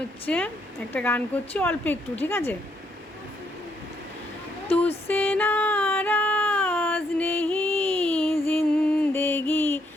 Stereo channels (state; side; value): normal; both; correlation 0.73